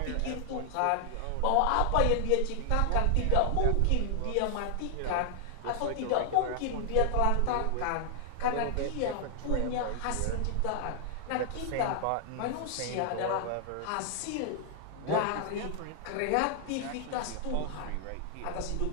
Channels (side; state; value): both; different; correlation 0.00